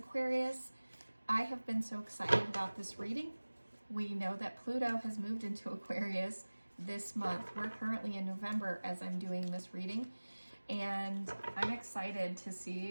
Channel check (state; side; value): inverted; both; correlation -1.00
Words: I have been so excited about this reading. We know that Pluto has moved into Aquarius this month. We're currently in November as I'm doing this reading, and I'm excited to